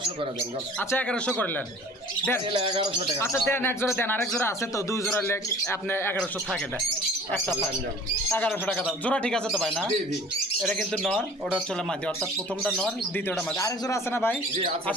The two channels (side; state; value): both; normal; correlation 0.47